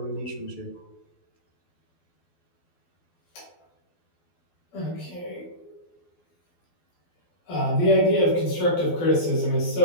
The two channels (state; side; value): late; right; 12 ms